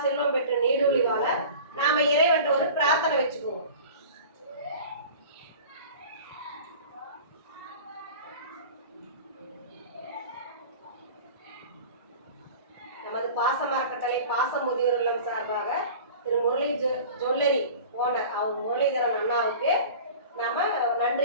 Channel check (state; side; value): inverted; both; correlation -0.39